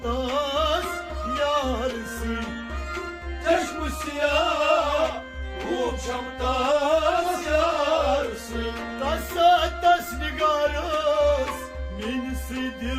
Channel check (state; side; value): identical; both; correlation 1.00